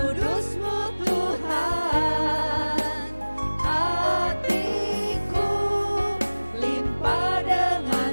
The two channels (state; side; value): inverted; both; correlation -1.00